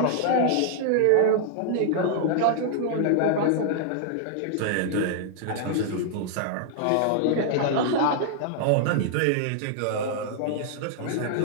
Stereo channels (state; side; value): different; both; correlation -0.01